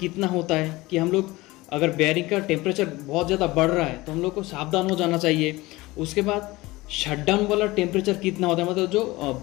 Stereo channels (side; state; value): right; quieter; 20.3 dB